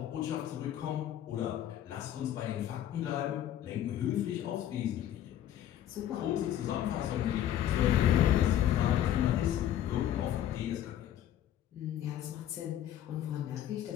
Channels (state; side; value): quieter; right; 11.4 dB